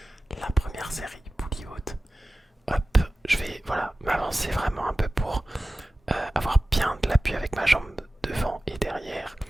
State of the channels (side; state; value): both; normal; correlation 0.96